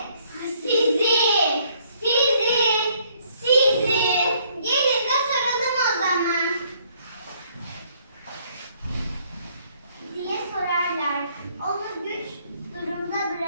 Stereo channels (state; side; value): inverted; both; correlation -0.66